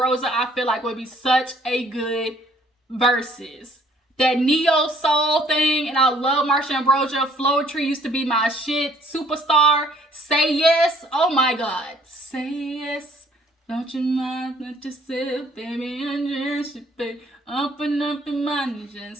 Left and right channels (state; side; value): normal; both; correlation 0.61